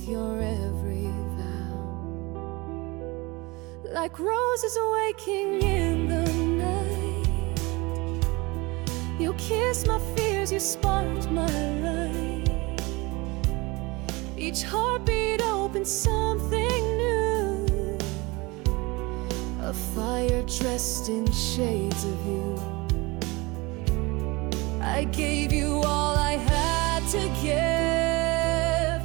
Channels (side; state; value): left; quieter; 24.1 dB